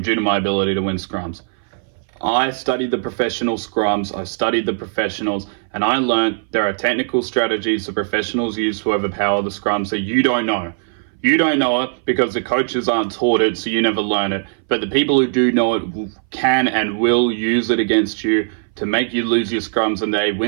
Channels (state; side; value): silent; left; 61 dB below the other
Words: due to my ability to win scrums. I studied the professional scrums, I studied the professionals, and I learned there are technical strategies the professionals use to overpower the scrums that you don't know. You don't know it because the coaches aren't taught it, so you never learn it. But the people who do know it can and will use it against you to make you lose your scrums and they